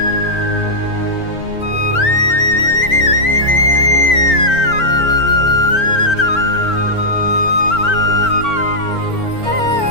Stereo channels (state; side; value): late; right; 4.4 ms